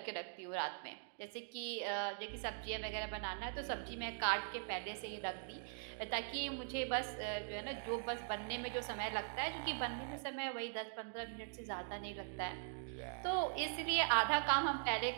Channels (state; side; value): silent; left; digital silence